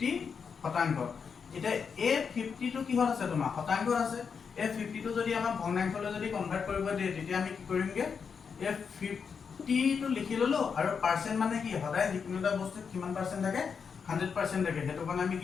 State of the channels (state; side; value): quieter; right; 6.1 dB